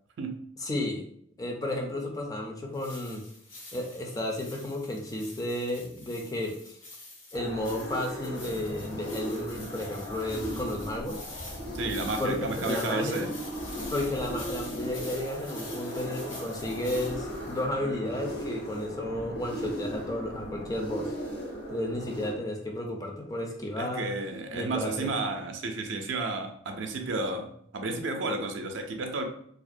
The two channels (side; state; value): both; normal; correlation 0.42